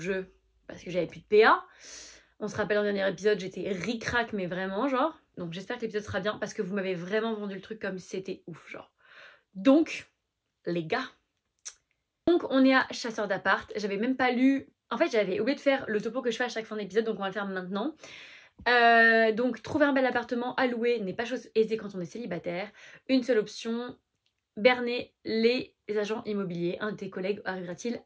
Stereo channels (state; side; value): identical; both; correlation 1.00